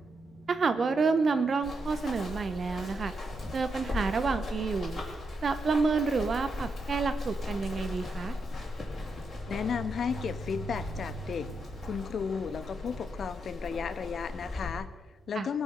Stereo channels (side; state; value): both; normal; correlation 0.82